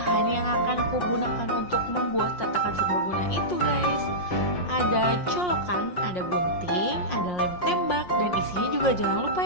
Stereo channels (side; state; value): right; late; 5.6 ms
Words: yang akan aku gunakan untuk membuat tatakan serbaguna itu guys. Ada colokan, ada gunting, ada lem tembak, dan isinya juga jangan lupa